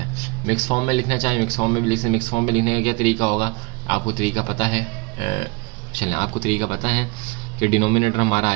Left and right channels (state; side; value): quieter; left; 26.8 dB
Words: हैं। मिक्स फॉर्म में लिखना चाहिए, मिक्स फॉर्म में भी लिख सकते हैं। मिक्स फॉर्म में लिखने का क्या तरीका होगा, आपको तरीका पता है। चलें, आपको तरीका पता है कि डिनोमिनेटर हमारा